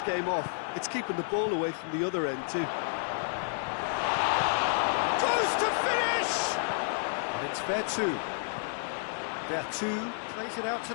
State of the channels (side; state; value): right; silent; digital silence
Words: game off. It's keeping the ball away from the other end too. Goes to finish! And it's Vertu. Vertu plays it out to